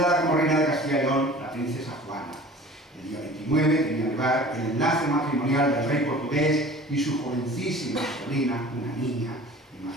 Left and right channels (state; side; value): normal; both; correlation 0.44